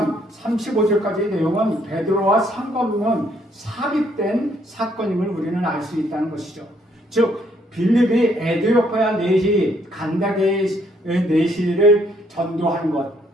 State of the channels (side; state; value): both; normal; correlation 0.68